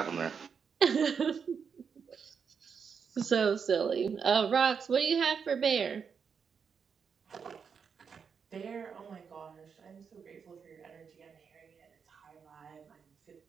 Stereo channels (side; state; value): left; quieter; 6.4 dB